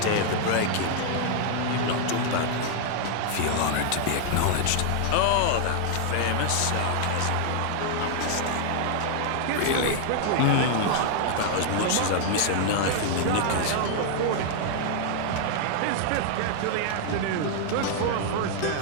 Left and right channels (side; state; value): both; different; correlation 0.00